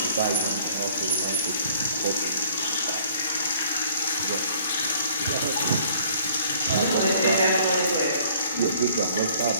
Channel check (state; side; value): inverted; both; correlation -0.57